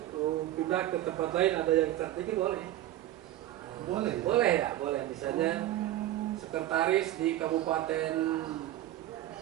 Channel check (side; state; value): left; quieter; 14.0 dB